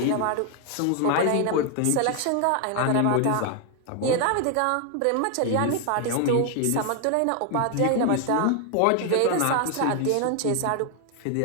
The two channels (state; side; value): different; both; correlation 0.00